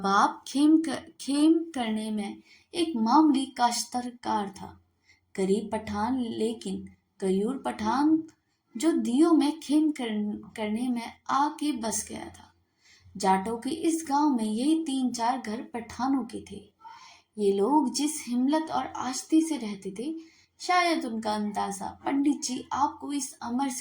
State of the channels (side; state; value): both; identical; correlation 1.00